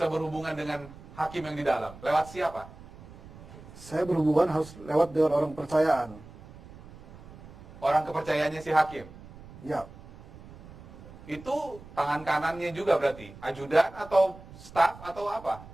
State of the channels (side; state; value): right; noise; rumble, 18 dB below the sound